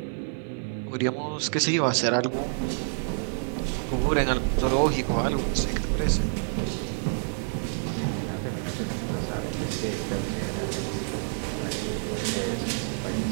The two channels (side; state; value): left; silent; digital silence